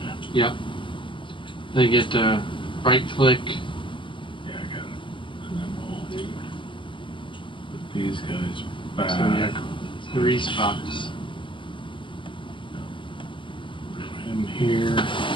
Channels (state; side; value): late; right; 0.25 ms